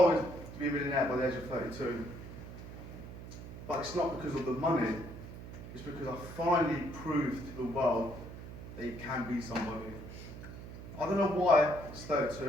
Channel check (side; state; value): right; noise; hum, 12 dB below the sound